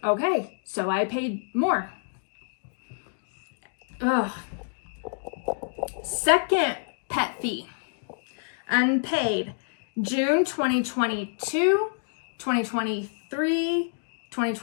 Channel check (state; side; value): silent; right; digital silence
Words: Okay, so I paid more. Ugh. Second pet fee, unpaid, June 2022, 2023,